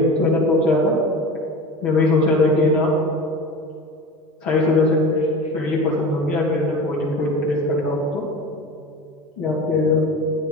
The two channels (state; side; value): normal; both; correlation 0.33